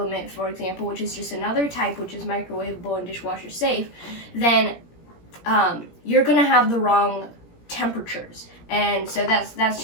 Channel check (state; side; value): late; right; 17 ms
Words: for example, which is just another type, which is microwavable and dishwasher safe, then you're going to have the wrong temperatures. And so that's